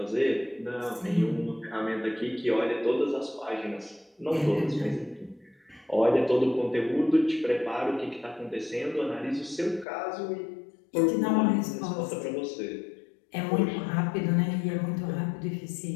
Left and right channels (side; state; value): right; drops out; at 9.9 s